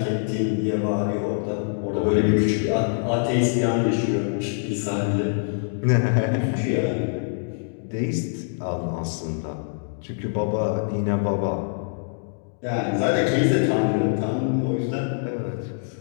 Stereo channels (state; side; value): silent; right; digital silence